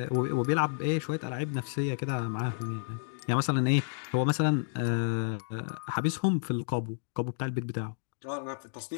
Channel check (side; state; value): right; silent; digital silence